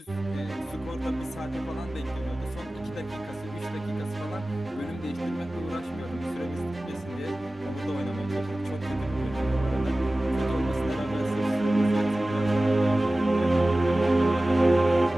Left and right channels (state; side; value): normal; both; correlation 0.96